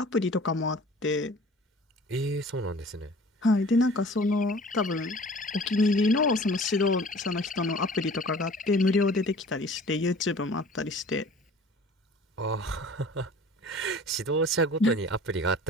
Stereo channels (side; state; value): both; normal; correlation 0.46